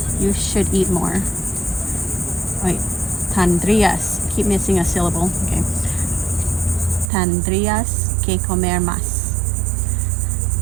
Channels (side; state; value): left; drops out; at 7.1 s